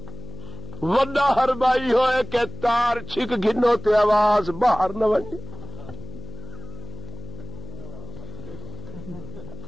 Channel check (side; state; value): left; noise; hum, 13 dB below the sound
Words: وڈا ہربائی ہوئے کہ تار چھک گنو تے آواز باہر نہ ونجے.